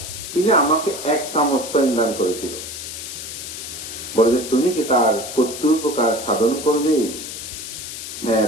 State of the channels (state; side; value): noise; left; hiss, 9 dB below the sound